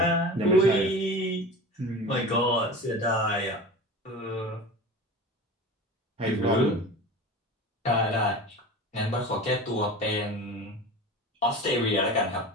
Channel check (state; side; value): normal; both; correlation 0.34